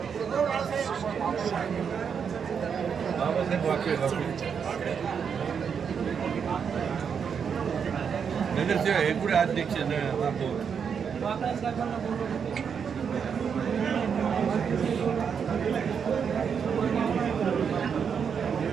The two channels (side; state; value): left; quieter; 6.9 dB